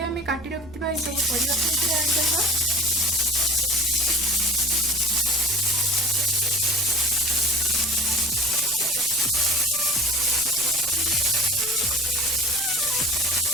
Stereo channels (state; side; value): noise; right; rumble, 19 dB below the sound